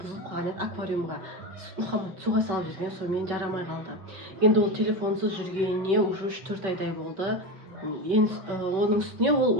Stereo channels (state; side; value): late; left; 5.5 ms